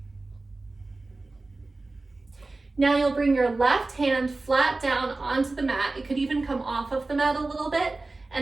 Now you'll bring your left hand flat down onto the mat. It could even come off of the mat a little bit.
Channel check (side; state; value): left; quieter; 3.3 dB